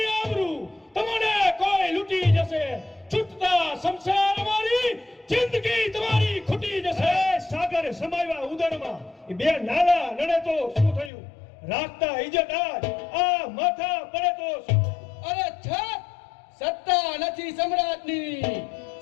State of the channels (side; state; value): right; drops out; at 11.1 s